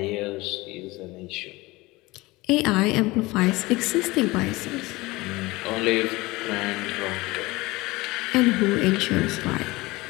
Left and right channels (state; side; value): quieter; right; 21.4 dB